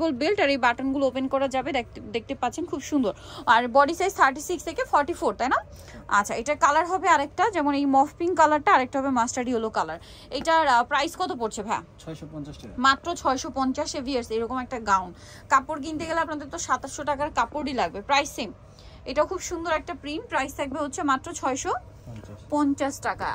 বেল্ট আর এই বাটনগুলো ওপেন করা যাবে, দেখতে পাচ্ছেন খুব সুন্দর। আর বডি সাইজ 36 থেকে 44, তাই না? আচ্ছা, এটার কালার হবে আরেকটা, যেমন এই মফ পিঙ্ক কালারটা, আরেকটা হবে মাস্টার্ড ইয়েলো কালার। এটার প্রাইস কত পড়ছে ভাইয়া? 650 টাকা, মাত্র 650 এ ভিউয়ার্স। এরকম একটা গাউন কাপড় কিনতে গেলে আপনাদের তো 2700 টাকার কাপড়ই লাগবে, প্রাইস সেম। এটা খুব সুন্দর একটা প্রিন্ট, প্রাইস থাকবে হচ্ছে মাত্র 650 টাকা।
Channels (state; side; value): identical; both; correlation 1.00